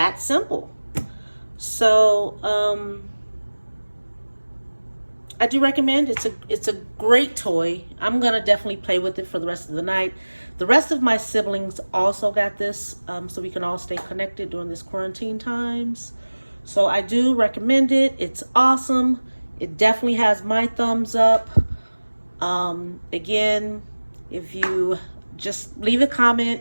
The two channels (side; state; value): both; inverted; correlation -1.00